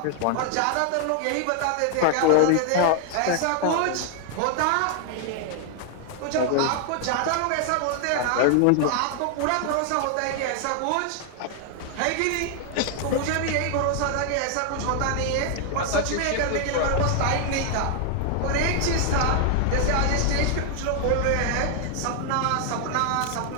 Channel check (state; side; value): different; both; correlation 0.00